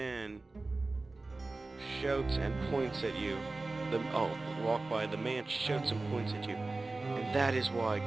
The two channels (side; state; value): left; quieter; 3.3 dB